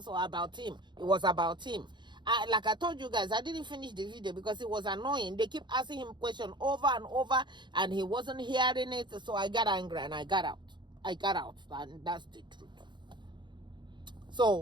about him. It was about him. Like I told you guys, I didn't finish the video because it was annoying. They keep asking him questions over and over, and he wasn't hearing it. So I got angry and I got out, and that's the truth.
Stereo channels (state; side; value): late; left; 0.22 ms